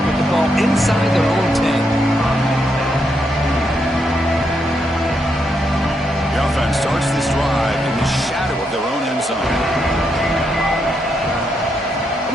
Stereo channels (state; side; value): normal; both; correlation 0.80